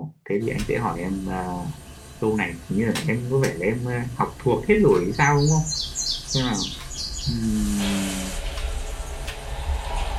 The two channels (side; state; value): both; identical; correlation 1.00